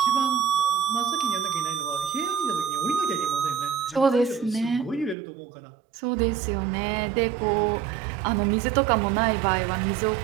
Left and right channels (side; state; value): left; drops out; at 5.2 s